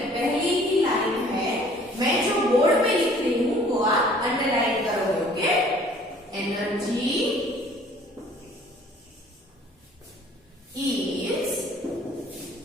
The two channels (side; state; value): both; normal; correlation 0.54